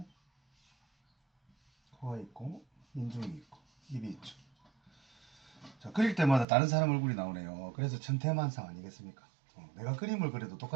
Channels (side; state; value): left; drops out; at 6.5 s